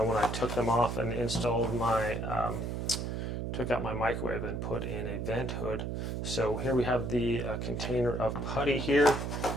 I took them off and installed my, took out my microwave and put in a vent hood. So here we have the container of putty here.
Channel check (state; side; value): noise; right; hum, 3 dB below the sound